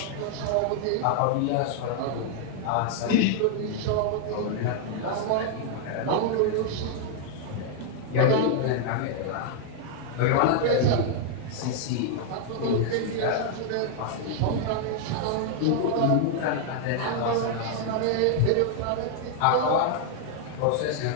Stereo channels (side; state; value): both; different; correlation 0.00